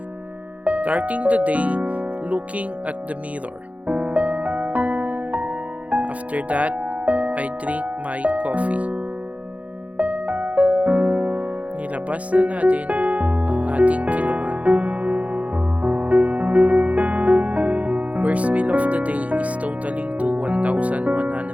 Starting the day looking at the mirror. After that, I drink my coffee. Nilabas na natin ang ating kiluman. First meal of the day is totaling to 1,100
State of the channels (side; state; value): left; late; 0.067 ms